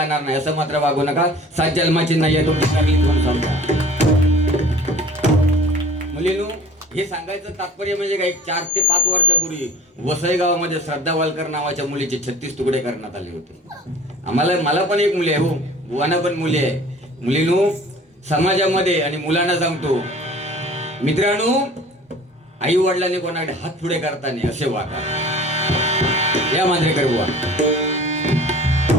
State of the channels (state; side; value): normal; both; correlation 0.44